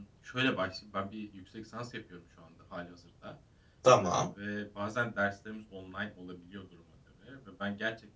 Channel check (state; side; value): identical; both; correlation 1.00